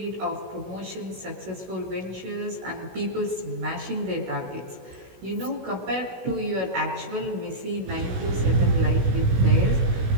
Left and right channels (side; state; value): left; late; 16 ms